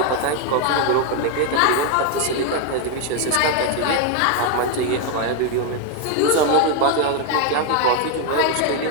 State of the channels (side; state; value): both; different; correlation 0.01